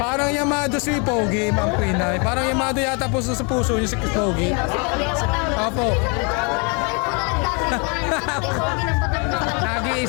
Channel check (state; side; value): quieter; right; 34.1 dB